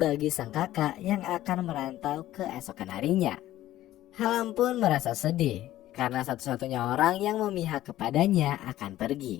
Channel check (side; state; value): right; quieter; 14.3 dB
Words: sang kakak yang akan merantau keesokan harinya. Halam pun merasa sedih karena satu-satunya orang yang memihak kepadanya akan